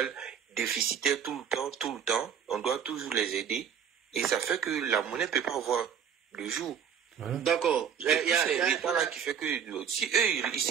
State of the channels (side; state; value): left; quieter; 7.9 dB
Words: déficitaires tout le temps. On doit toujours les aider. Et ça fait que la monnaie ne peut pas avoir le jour. D'accord. C'est l'État là qui fait que si eux, ils